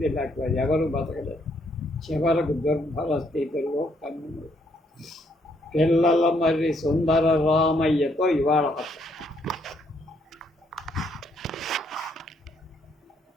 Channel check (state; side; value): normal; both; correlation 0.71